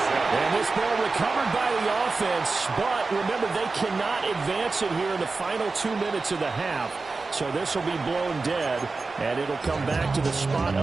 And this ball recovered by the offense, but remember, they cannot advance it here in the final 2 minutes of the half. So this will be blown dead, and it'll come back to the spot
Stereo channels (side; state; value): left; quieter; 3.9 dB